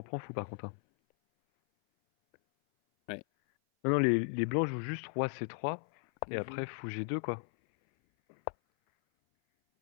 prends fou, par contre, hein. Ouais. Non, non, les blancs jouent juste roi C3, et Mhm. après fou G2, quoi.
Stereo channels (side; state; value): right; silent; 54 dB below the other